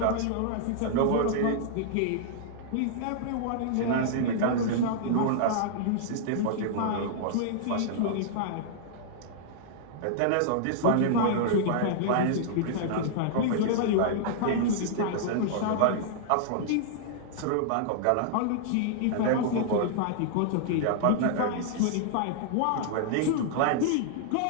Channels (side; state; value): both; different; correlation -0.01